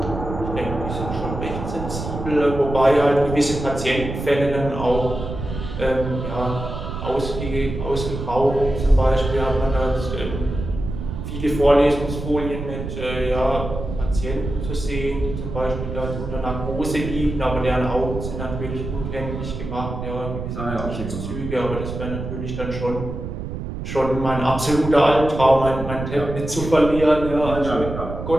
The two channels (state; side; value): noise; right; rumble, 7 dB below the sound